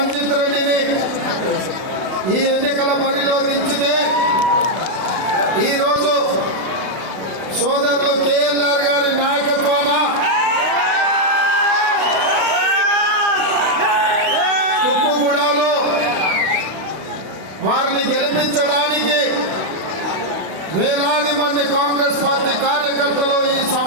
రెడ్డిని ఈ ఎన్నికల బరిలో దించితే ఈరోజు సోదరులు కేఎల్ఆర్ గారి నాయకత్వాన కుప్పుగూడలో వారిని గెలిపించడానికి వేలాది మంది కాంగ్రెస్ పార్టీ కార్యకర్తలు ఈ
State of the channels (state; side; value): late; left; 32 ms